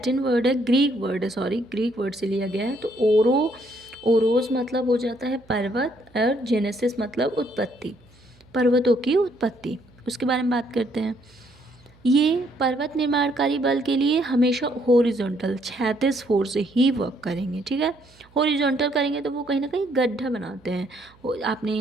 वर्ड है, ग्रीक वर्ड से लिया गया है, तो ओरोस मतलब हो जाता है पर्वत, और जेनेसिस मतलब उत्पत्ति, पर्वतों की उत्पत्ति, उसके बारे में बात करते हैं। ये पर्वत निर्माणकारी बल के लिए हमेशा हॉरिजॉन्टल, क्षैतिज फोर्स से ही वर्क करेंगे, ठीक है। हॉरिजॉन्टल करेंगे तो वो कहीं ना कहीं गड्ढा बनाते हैं,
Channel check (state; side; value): noise; right; hum, 29 dB below the sound